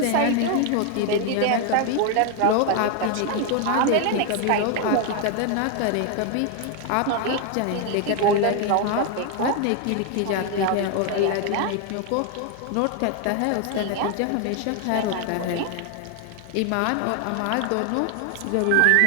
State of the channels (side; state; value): both; different; correlation 0.01